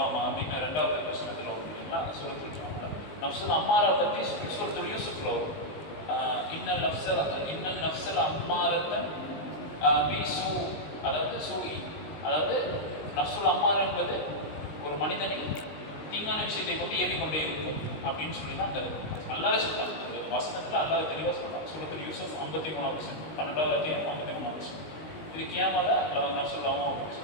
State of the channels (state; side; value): late; right; 19 ms